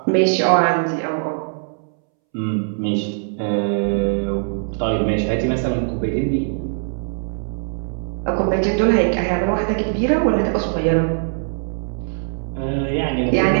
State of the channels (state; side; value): silent; left; 65 dB below the other